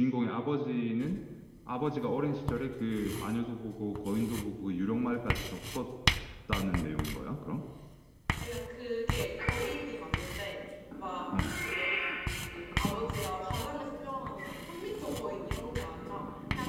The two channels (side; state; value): both; identical; correlation 1.00